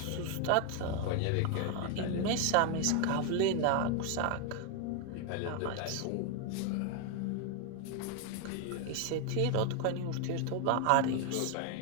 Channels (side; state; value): both; different; correlation 0.01